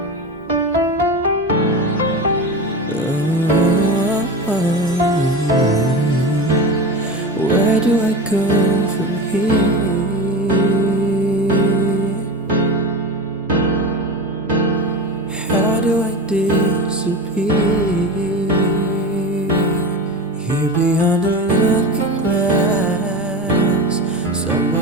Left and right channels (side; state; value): both; normal; correlation 0.25